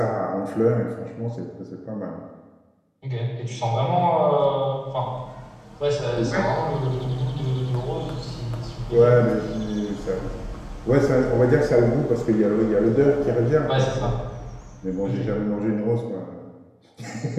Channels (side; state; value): both; identical; correlation 1.00